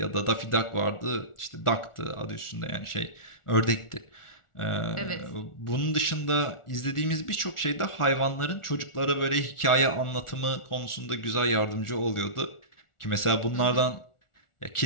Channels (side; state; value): right; late; 1.4 ms